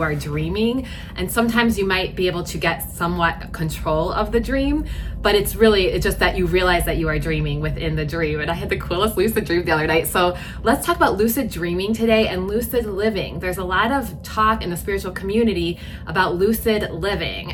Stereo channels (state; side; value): identical; both; correlation 1.00